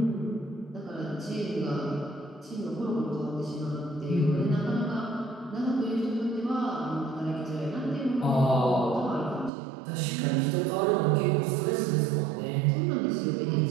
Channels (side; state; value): left; drops out; at 9.5 s